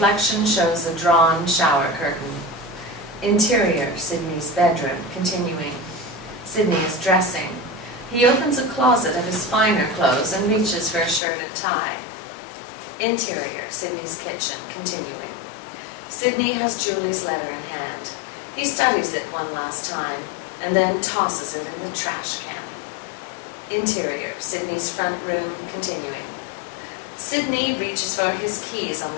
shows a drawn shower curtain. Interior, Sydney's bedroom, continuing. Sydney is dressing. He opens a closet of his finer clothes and reaches for a shirt and tie. Interior, Sydney's kitchen, continuing. Sydney has Julie's letter in hand. He studies it one last time, and then tosses it in the trash can. Interior, Sydney's front room, continuing. Sydney reaches for his keys on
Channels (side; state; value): right; drops out; at 11.2 s